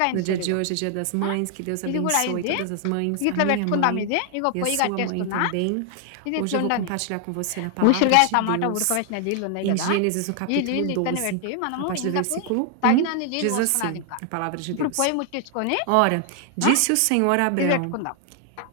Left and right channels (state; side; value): different; both; correlation 0.00